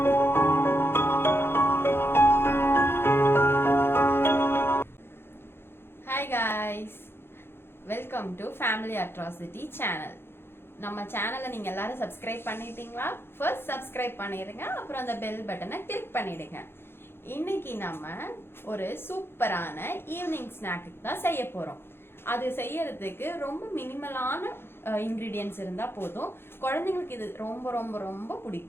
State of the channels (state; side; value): late; right; 0.11 ms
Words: Hi guys, welcome to Family Atrocity channel. நம்ம சேனலை நீங்க எல்லாரும் சப்ஸ்கிரைப் பண்ணிட்டீங்களா? ஃபர்ஸ்ட் சப்ஸ்கிரைப் பண்ணிடுங்க, அப்புறம் அந்த பெல் பட்டனை கிளிக் பண்ணிடுங்க. இன்னைக்கு நம்ம ஒரு சூப்பரான ஈவினிங் ஸ்நாக்கு தான் செய்ய போறோம். அது செய்யறதுக்கு ரொம்ப மினிமலான இன்கிரீடியன்ஸ் இருந்தா போதும். குழந்தைங்களுக்கு இது ரொம்ப ரொம்ப ரொம்ப